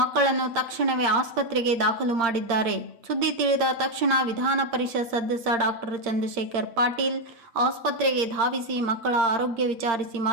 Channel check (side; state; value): left; late; 8.7 ms